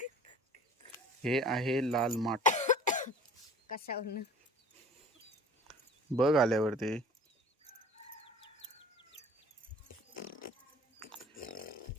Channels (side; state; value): both; normal; correlation 0.46